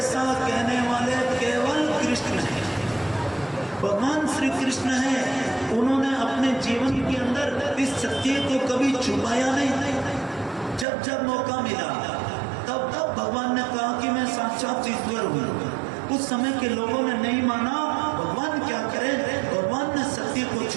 कहने वाले केवल कृष्ण हैं, भगवान श्री कृष्ण हैं। उन्होंने अपने जीवन के अंदर इस सत्य को कभी छुपाया नहीं। जब जब मौका मिला तब तब भगवान ने कहा कि मैं साक्षात ईश्वर हूँ। उस समय के लोगों ने नहीं माना। भगवान क्या करे, भगवान ने सत्य को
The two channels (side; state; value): left; drops out; at 10.9 s